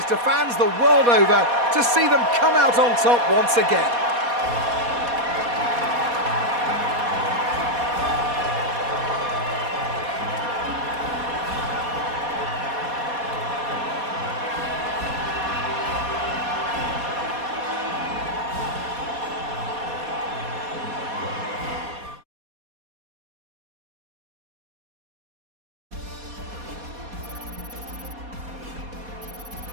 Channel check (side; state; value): left; late; 4.2 ms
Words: to fans the world over to see them come out on top once again.